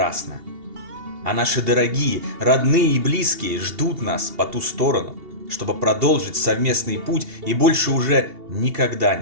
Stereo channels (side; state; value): left; late; 2.8 ms